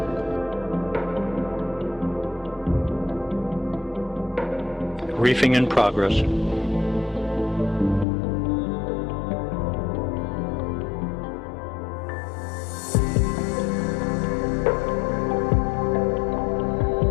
Reefing in progress.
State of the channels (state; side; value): drops out; right; at 8.1 s